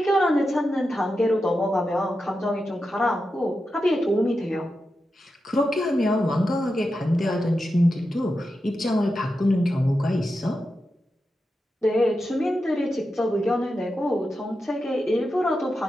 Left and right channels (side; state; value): both; normal; correlation 0.90